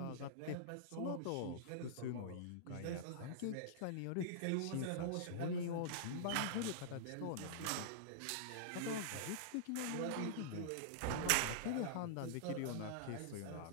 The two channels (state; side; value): different; both; correlation -0.02